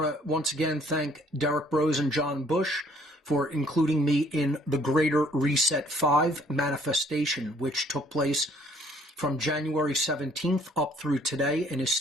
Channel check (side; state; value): both; normal; correlation 0.61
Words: to once again thank Derek Brose and John Bush for including me in the Greater Reset 5 manifestation, which took place from January 17th up through today and is